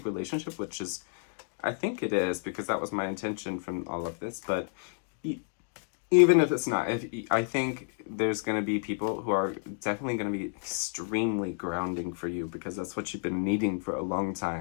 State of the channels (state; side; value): silent; right; digital silence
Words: relationship, which is, I think it is, because that was my intention from all of this. But even if it's not, I think there's going to be people who are definitely going to be extremely grounding for you, because that's what you've been needing for a long